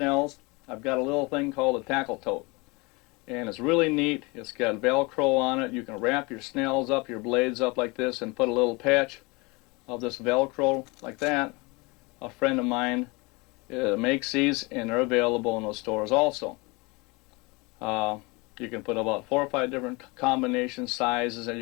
I've got a little thing called a tackle tote. And it's really neat. It's got Velcro on it. You can wrap your snells up, your blades up like this, and put a little patch of this Velcro like that. A friend of mine makes these, and they're available in those stores also. You can put about 4 or 5 different combination sizes, and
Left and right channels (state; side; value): quieter; right; 26.6 dB